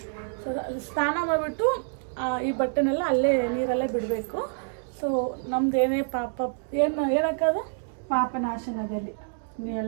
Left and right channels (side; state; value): left; silent; digital silence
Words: ಸೊ ಸ್ನಾನ ಮಾಡಿಬಿಟ್ಟು ಈ ಬಟ್ಟೆನೆಲ್ಲ ಅಲ್ಲೇ ನೀರಲ್ಲೇ ಬಿಡಬೇಕು. ಸೊ ನಮ್ದೇನೇ ಪಾಪ ಏನಕ್ಕಾದು ಪಾಪನಾಶನದಲ್ಲಿ